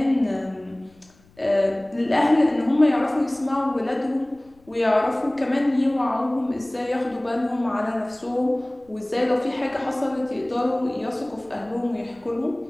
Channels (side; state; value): left; noise; rumble, 30 dB below the sound